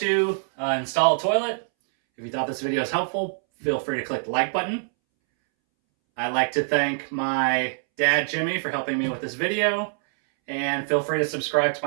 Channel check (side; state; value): left; silent; 62 dB below the other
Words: install a toilet. If you thought this video was helpful, feel free to click the like button. I'd like to thank my dad, Jimmy, for helping me with this video. And feel free to subscribe to